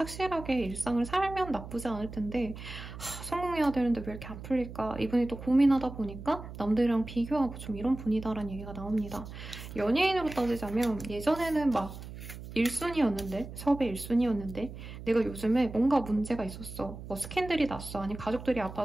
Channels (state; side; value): noise; right; hum, 12 dB below the sound